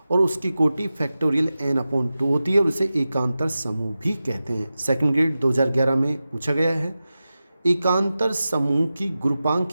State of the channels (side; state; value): both; inverted; correlation -0.94